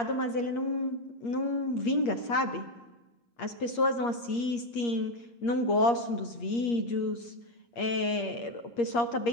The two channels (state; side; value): late; right; 8.5 ms